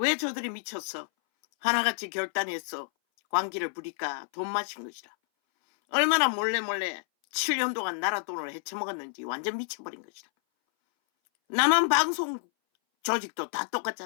저들이 미쳤어? 하나같이 결단했어. 광기를 부릴까 돈 마신 것이라. 얼마나 몰래 7년 동안 나라 돈을 헤쳐먹었는지 완전 미쳐버린 것이라. 남한 방송 조직도 다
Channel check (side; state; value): right; silent; 59 dB below the other